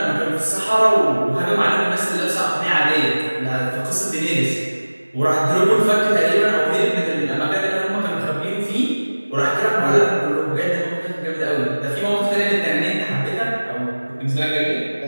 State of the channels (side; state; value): both; inverted; correlation -1.00